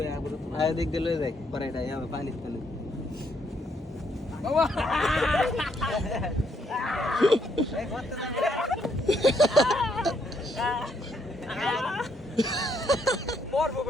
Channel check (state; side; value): normal; both; correlation 0.72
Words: আয় দিক দিয়ে লয়ে যাই পরে এটা যাবে পানির তলে বাবা এই করতে মরবো